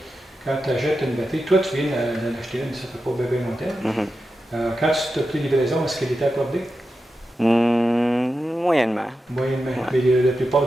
quand tu achètes une batterie, toi tu viens d'en acheter une, ça ne fait pas bébé longtemps. Quand tu t'as pris livraison, est-ce qu'elle était accordée? Moyennement. Moyennement, Ouais. mais la plupart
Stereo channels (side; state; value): both; normal; correlation 0.90